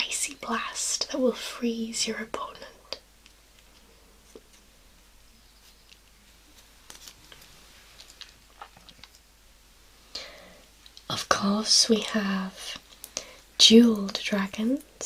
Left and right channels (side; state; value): both; identical; correlation 1.00